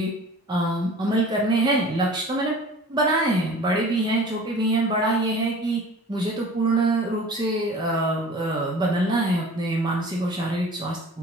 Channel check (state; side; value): normal; both; correlation 0.43